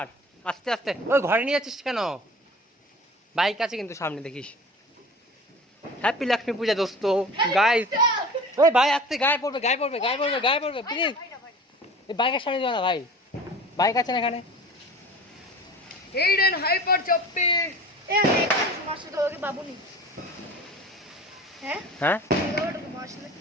আস্তে আস্তে। ওই ঘরে নিয়ে যাচ্ছিস কেন? বাইক আছে কিন্তু সামনে, দেখিস। হ্যাপি লক্ষ্মী পূজা দোস্ত গাইস। ওই ভাই আস্তে, গায়ে পড়বে, গায়ে পড়বে, গায়ে পড়বে, গায়ে পড়বে, প্লিজ। এই বাইকের সামনে যাও না ভাই, বাইক আছে না এখানে? এইডেন হাইপার চপ্পি এ আমি মাসে তো ওকে বাবু নি। হ্যাঁ হ্যাঁ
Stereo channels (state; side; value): normal; both; correlation 0.39